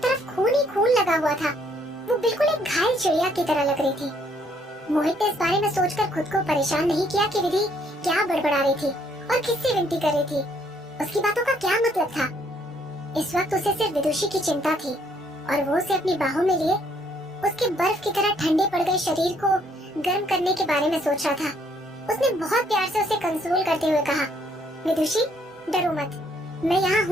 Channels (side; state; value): both; normal; correlation 0.67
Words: खून ही खून लगा हुआ था। वो बिल्कुल एक घायल चिड़िया की तरह लग रही थी। मोहित ने इस बारे में सोचकर खुद को परेशान नहीं किया कि विधि क्या बड़बड़ा रही थी और किससे विनती कर रही थी। उसकी बातों का क्या मतलब था? इस वक्त उसे सिर्फ विदुषी की चिंता थी और वो उसे अपनी बाहों में लिए उसके बर्फ की तरह ठंडे पड़ गए शरीर को गर्म करने के बारे में सोच रहा था। उसने बहुत प्यार से उसे कंसोल करते हुए कहा, विदुषी, डरो मत, मैं यहाँ